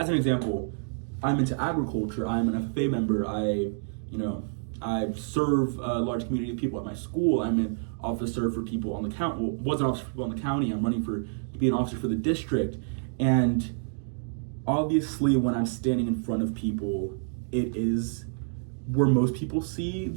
an example, I'm into agriculture. I'm an FFA member. I serve a large community of people at my school. I'm an officer for people on the county. Well, was an officer for people on the county. I'm running to be an officer for the district. And obviously when I'm standing in front of people it is where most people see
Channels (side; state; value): left; silent; digital silence